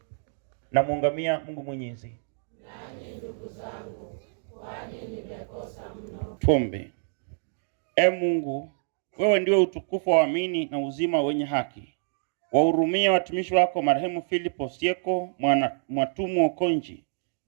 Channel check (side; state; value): left; silent; digital silence